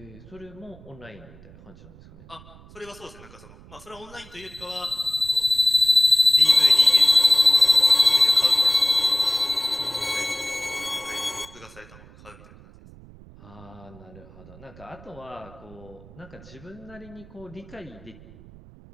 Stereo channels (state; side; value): noise; right; rumble, 22 dB below the sound